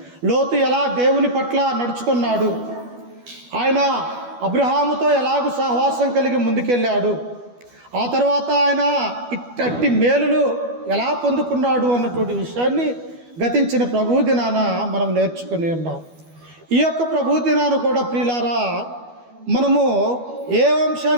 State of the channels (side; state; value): left; late; 12 ms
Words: లోతు ఎలా దేవుని పట్ల నడుచుకున్నాడు, ఆయన అబ్రహాముతో ఎలాగూ సహవాసం కలిగి ముందుకెళ్ళాడు, ఆ తర్వాత ఆయన ఇట్టి మేలులు ఎలా పొందుకున్నాడు అన్నటువంటి విషయాన్ని గతించిన ప్రభు దినాన మనం నేర్చుకుని ఉన్నాం. ఈ యొక్క ప్రభు దినాన్ని కూడా ప్రియులారా మనము ఏ